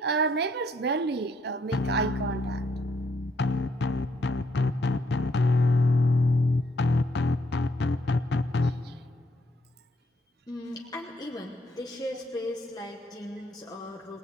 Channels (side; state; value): both; normal; correlation 0.71